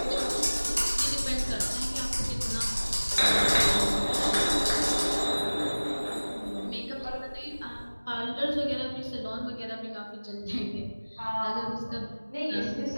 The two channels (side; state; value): both; inverted; correlation -1.00